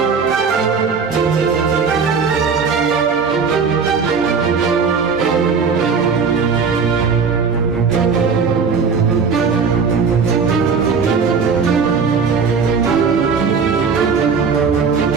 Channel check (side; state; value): left; quieter; 5.5 dB